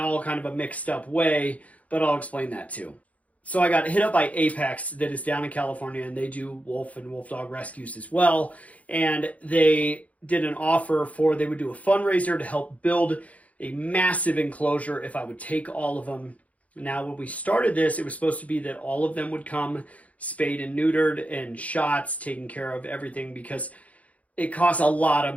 kind of a mixed up way, but I'll explain that too. So I got hit up by Apex that is down in California, and they do wolf and wolf dog rescues as well. And they did an offer they would do a fundraiser to help build a massive enclosure if I would take all of them. Now, when we started this, it was supposed to be that all of them would come spayed and neutered and shots, taken care of, everything, because it costs a lot of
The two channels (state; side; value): late; right; 0.068 ms